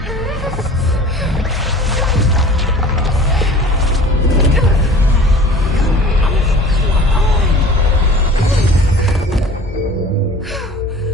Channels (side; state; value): both; normal; correlation 0.44